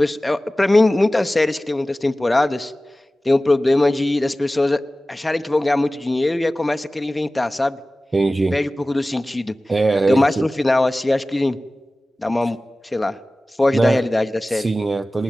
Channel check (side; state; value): both; normal; correlation 0.97